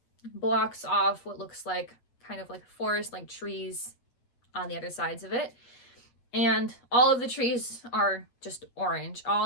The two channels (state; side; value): late; right; 8.4 ms